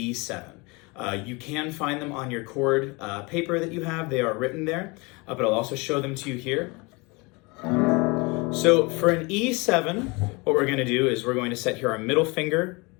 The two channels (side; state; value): right; quieter; 27.1 dB